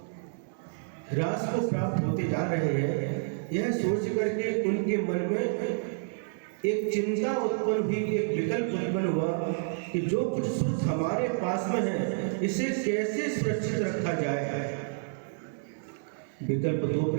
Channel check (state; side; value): silent; left; digital silence